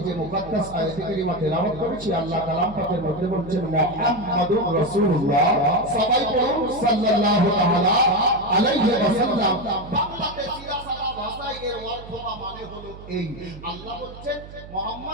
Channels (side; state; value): right; noise; hum, 16 dB below the sound